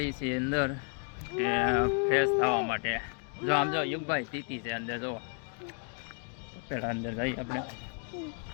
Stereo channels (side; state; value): right; quieter; 38.9 dB